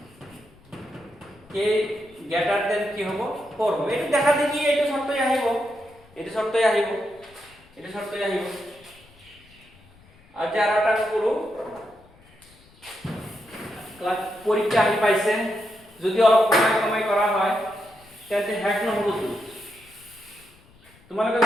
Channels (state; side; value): noise; left; rumble, 28 dB below the sound